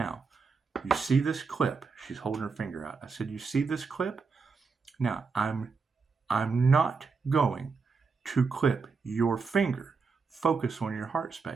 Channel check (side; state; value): left; quieter; 4.9 dB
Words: you see this clip? She's holding her finger out. I said, you see this clip? Now, I'm not going to clip your finger. Focus on your heart